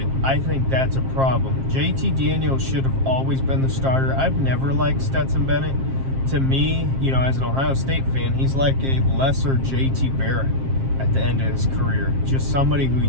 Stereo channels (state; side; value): late; left; 7.5 ms